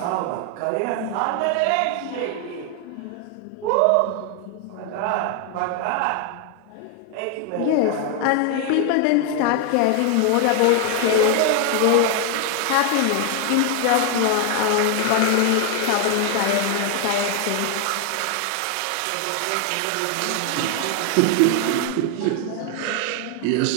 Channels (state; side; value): different; both; correlation 0.00